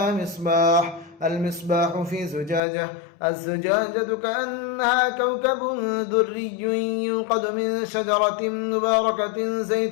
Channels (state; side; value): drops out; right; at 2.6 s